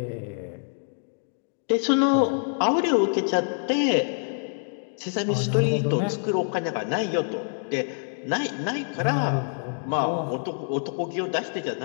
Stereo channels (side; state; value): right; silent; digital silence